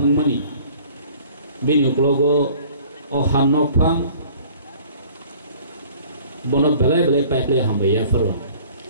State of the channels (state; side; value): inverted; both; correlation -0.51